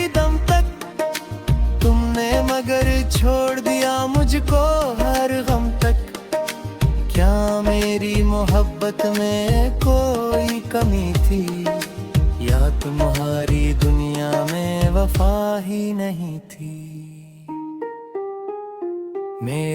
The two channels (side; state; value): both; identical; correlation 1.00